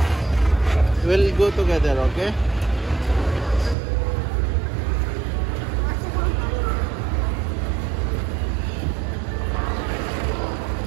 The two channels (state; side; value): drops out; left; at 3.8 s